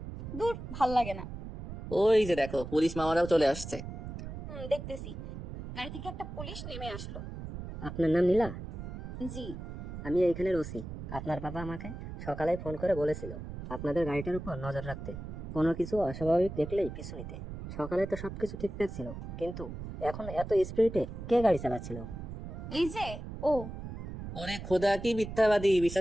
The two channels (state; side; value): noise; right; rumble, 9 dB below the sound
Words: দূর, ভাল লাগে না। ওই যে দেখো, পুলিশ মামারাও চলে আসছে। দেখতেছি। গাড়ি থেকে একটা পুলিশ নেমে আসলো। আপনার নাম নীলা? জি। আমি এইখানের ওসি। আপনার বাবা আমাকে সকালে ফোন করে বলেছিল আপনাদের গাড়িটার উপর নজর রাখতে, কোনো কিছু অস্বাভাবিক দেখলেই পিছু নিতে। সকালে তো সবকিছু ঠিকঠাক ছিল, কিন্তু এখন এত স্পিডে কে গাড়ি চালাচ্ছিল? এই যে ও। ওরে খোদা, কি মিথ্যাবাদী!